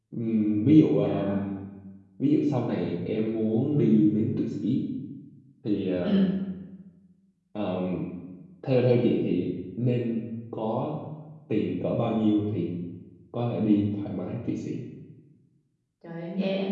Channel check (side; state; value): both; identical; correlation 1.00